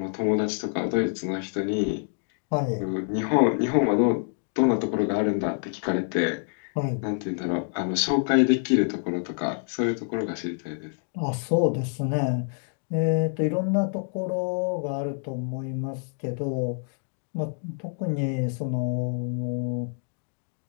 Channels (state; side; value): silent; right; digital silence